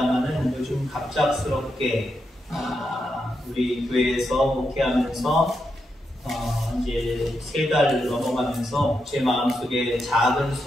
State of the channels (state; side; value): normal; both; correlation 0.84